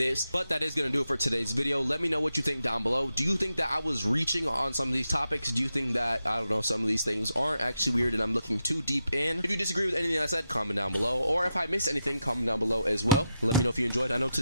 but that is gonna do it for today's video. Let me know what you think down below. Do you think that I was reaching on some of these topics? Do you think that, I don't know, some of these things aren't actually weird and I'm looking too deep in? If you disagree with anything I said, comment down below, or if I missed anything, comment down below as well. Let me know if you enjoyed. I know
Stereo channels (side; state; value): both; inverted; correlation -0.86